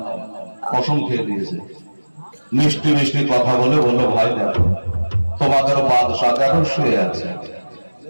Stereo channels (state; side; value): inverted; both; correlation -1.00